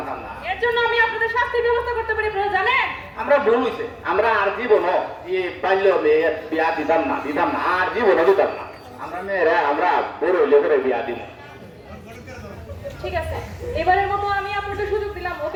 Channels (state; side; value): identical; both; correlation 1.00